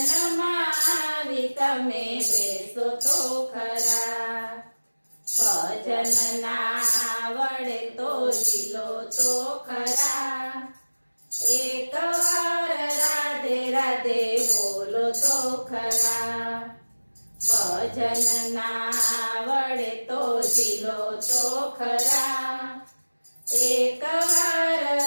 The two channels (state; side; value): inverted; both; correlation -1.00